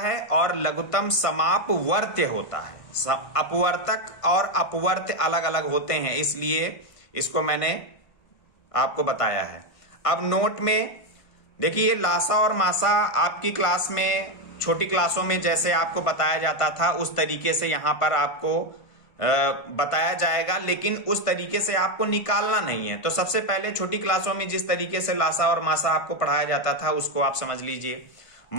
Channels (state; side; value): late; right; 1.5 ms